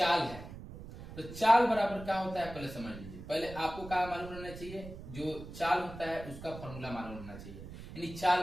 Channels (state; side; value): noise; right; rumble, 13 dB below the sound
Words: है। तो चाल बराबर क्या होता है पहले समझ लीजिए। पहले आपको क्या मालूम रहना चाहिए, जो चाल होता है उसका फॉर्मूला मालूम रहना चाहिए। यानी चाल